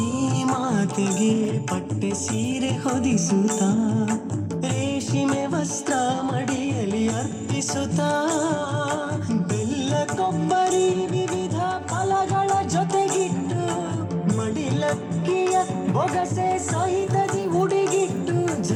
ಪಟ್ಟೆ ಸೀರೆ ಹೊದಿಸುತ್ತಾ ರೇಷ್ಮೆ ವಸ್ತ್ರ ಮಡಿಯಲಿ ಅರ್ಪಿಸುತ್ತಾ ಬೆಲ್ಲ ಕೊಬ್ಬರಿ ವಿವಿಧ ಫಲಗಳ ಜೊತೆಗಿಟ್ಟು ಮಡಿಲಕ್ಕಿಯ ಬೊಗಸೆ ಸಹಿತದಿ ಉಡಿಗಿಟ್ಟು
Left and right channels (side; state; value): both; identical; correlation 1.00